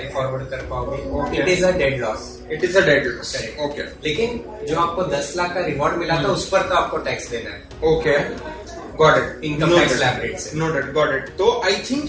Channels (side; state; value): both; identical; correlation 1.00